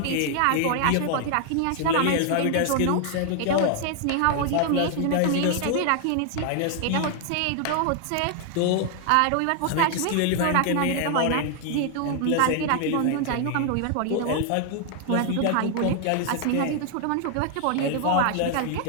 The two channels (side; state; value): both; different; correlation 0.00